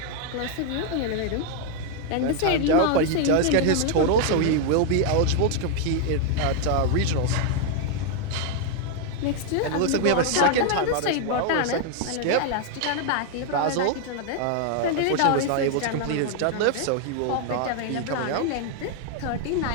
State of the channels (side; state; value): both; different; correlation 0.00